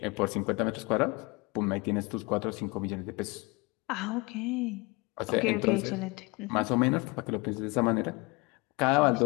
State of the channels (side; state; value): right; quieter; 26.5 dB